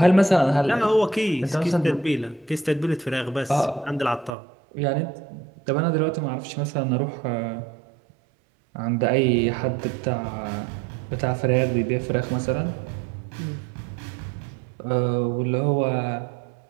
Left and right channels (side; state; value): left; drops out; at 4.3 s